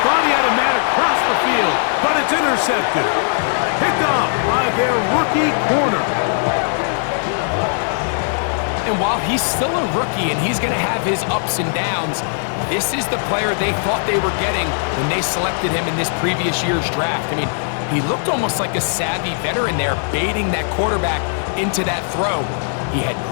thought he had a man across the field, but it's intercepted. Picked off by their rookie corner. And while he's still a rookie and he's going to have his ups and downs, this is the player they thought they were getting when they selected him in this previous year's draft. I mean, he looked almost like a savvy veteran there, baiting that quarterback into that throw. He had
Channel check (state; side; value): silent; right; 63 dB below the other